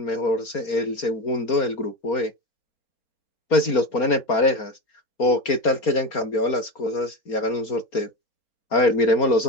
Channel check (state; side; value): late; right; 4.3 ms